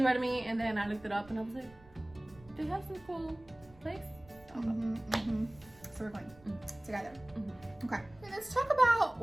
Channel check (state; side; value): noise; right; rumble, 24 dB below the sound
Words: me, and then I looked it up, and I was like, they have some cool place. I'll go. So we're going together. Okay. Let's talk about